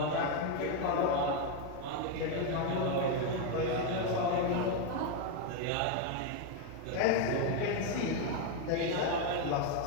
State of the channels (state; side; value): different; both; correlation 0.02